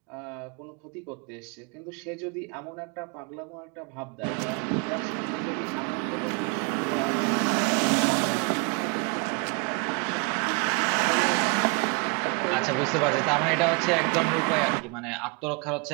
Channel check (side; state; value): left; quieter; 33.5 dB